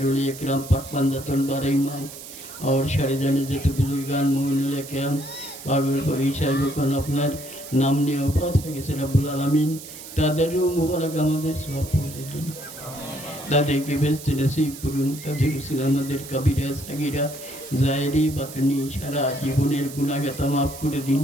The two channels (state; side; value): noise; right; hiss, 14 dB below the sound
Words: उलिया किराम पाकबंदतुल बारईमान और शरीदाने जितने बुजुर्गान मोमिनुल किराम पागल को ईशा যখন আপনার নাম নিয়ে ওফাত হয়ে গেছে রব্বুল আলামিন তাদেরও মুবারক আমাদের সওয়াব পৌঁছে দিন তাদেরকে বেহেশতে নসিব করুন তাদের রসুল আমাদের কবিরা সাগীরা জায়েরি বাতনি সারা জীবনের গুনাহগাতা মাফ করে দিন